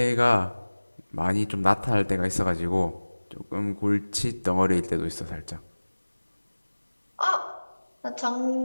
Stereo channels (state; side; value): inverted; both; correlation -1.00